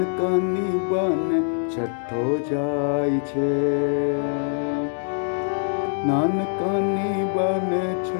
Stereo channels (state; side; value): silent; right; 63 dB below the other